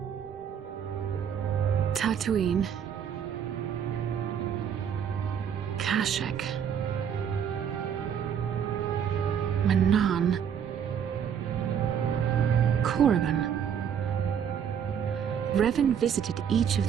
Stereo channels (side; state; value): left; quieter; 8.2 dB